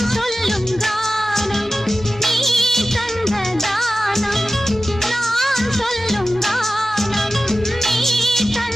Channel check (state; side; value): normal; both; correlation 0.94